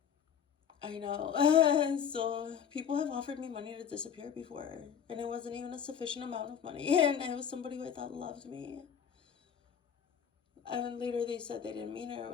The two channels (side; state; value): right; quieter; 8.0 dB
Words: I know. So people have offered me money to disappear before, and it wasn't even a sufficient amount of money, and it was somebody who I thought loved me. And later they said they didn't mean it or